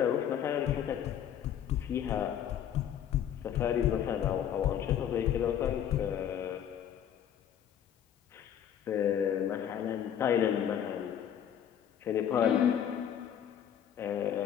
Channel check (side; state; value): right; quieter; 9.6 dB